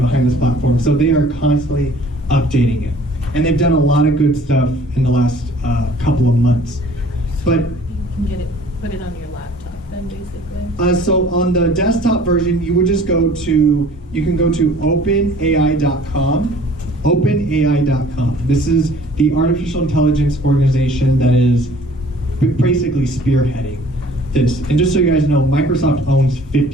this platform. So they are constantly updating it. And they've done a lot of good stuff in the last couple of months. But You can put it on your laptop then, basically. so on the desktop version, you would just you can go to openai.com. OpenAI.com. This is the artificial intelligence organization that is basically spearheading this. And just so you guys know, Microsoft owns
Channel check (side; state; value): both; normal; correlation 0.51